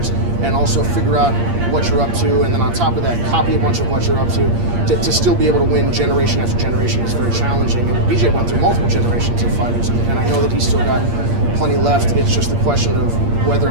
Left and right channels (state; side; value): late; left; 8.6 ms